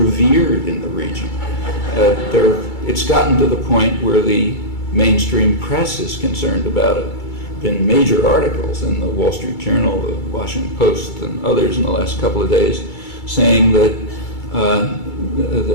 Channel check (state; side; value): late; right; 2.3 ms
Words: in the region. It's gotten to the point where the mainstream press is concerned about it. Been major articles in the Wall Street Journal, the Washington Post, and others in the last couple of days saying that